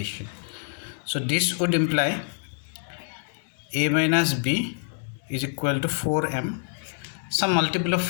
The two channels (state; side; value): silent; right; 61 dB below the other